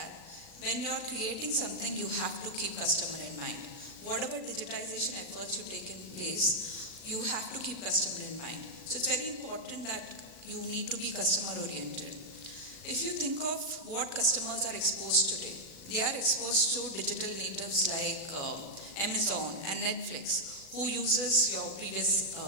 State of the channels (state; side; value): late; right; 36 ms